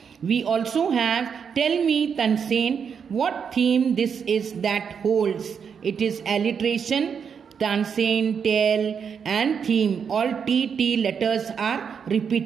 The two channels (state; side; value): quieter; left; 6.8 dB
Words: We also have, tell me, Tansen, what theme this is that holds. It is alliteration. Tansen, tell and theme. All T letters are